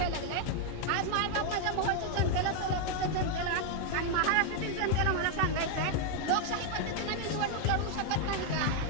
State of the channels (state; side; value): different; both; correlation 0.00